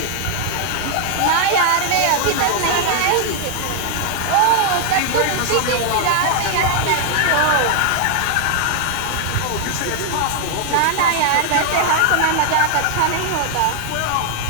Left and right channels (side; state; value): both; different; correlation 0.00